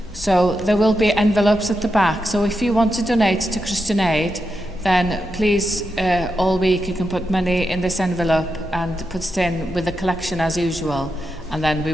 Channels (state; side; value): normal; both; correlation 0.87